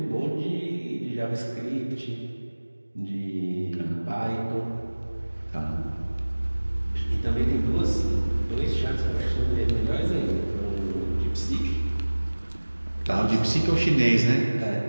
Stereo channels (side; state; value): both; inverted; correlation -1.00